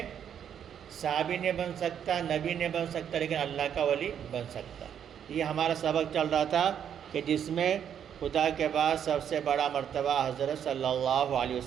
صحابی نہیں بن سکتا، نبی نہیں بن سکتا، لیکن اللہ کا ولی بن سکتا۔ یہ ہمارا سبق چل رہا تھا کہ جس میں خدا کے بعد سب سے بڑا مرتبہ حضرت صلی اللہ علیہ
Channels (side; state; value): left; quieter; 8.8 dB